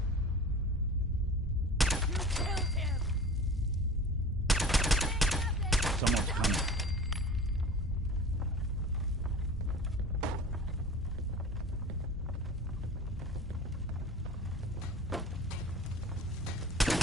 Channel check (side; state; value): both; normal; correlation 0.39